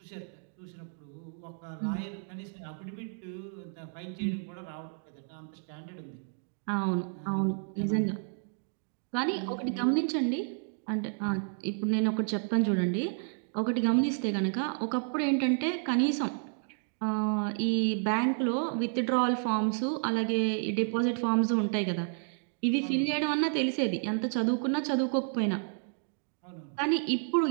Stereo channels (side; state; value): left; silent; 57 dB below the other